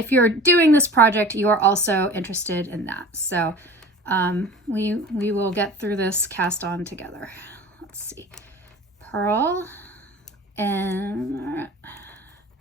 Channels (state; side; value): normal; both; correlation 0.41